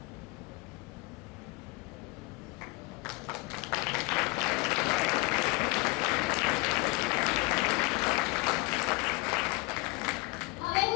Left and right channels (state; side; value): quieter; right; 25.9 dB